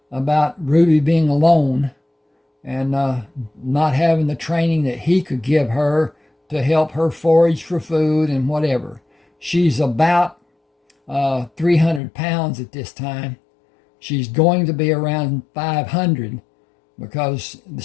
about Ruby being alone and not having the training that he could give her to help her forage for food and whatever. She's about 300 pounds at this time. She's going to be around 500 because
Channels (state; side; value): drops out; right; at 12.0 s